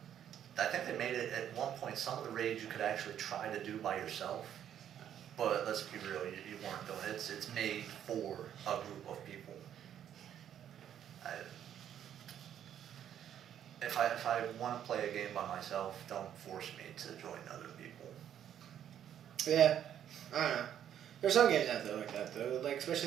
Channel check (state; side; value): quieter; left; 10.0 dB